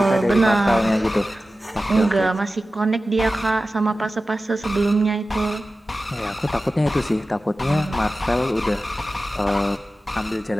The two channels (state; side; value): normal; both; correlation 0.95